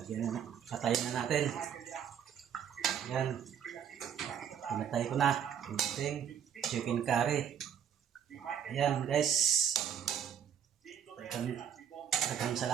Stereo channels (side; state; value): left; quieter; 8.6 dB